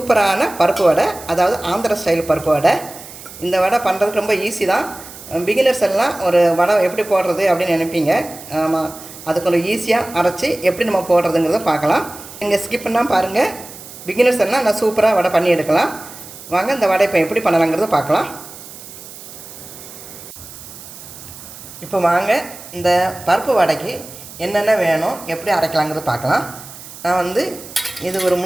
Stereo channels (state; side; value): noise; right; hiss, 16 dB below the sound